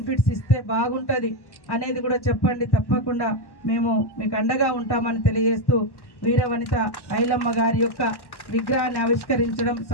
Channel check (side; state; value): right; late; 1.1 ms